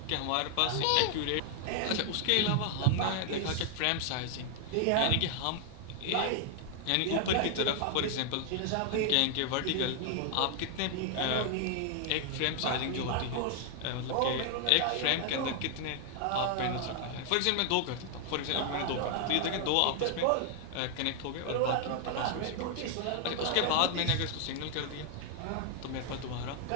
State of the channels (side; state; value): both; different; correlation 0.00